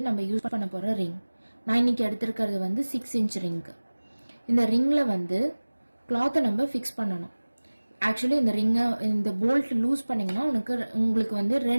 நம்ம யூஸ் பண்ண போகிற ரிங். நான் இன்னைக்கு எடுத்திருக்கிறது 6 இன்ச் ரிங்கு. இந்த ரிங்கில் கிளாத்தை நம்ம ஃபிக்ஸ் பண்ணணும். ஆக்சுவலி இந்த ரிங்கை இந்த போல்ட் லூஸ் பண்ணிங்கன்னா உங்களுக்கு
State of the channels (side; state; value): both; inverted; correlation -1.00